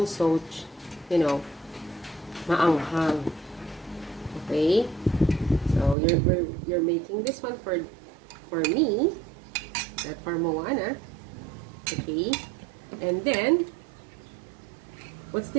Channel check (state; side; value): drops out; left; at 6.0 s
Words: you know, maanghang. Okay, so you're making this one for me, not for Moana. Okay, and then what's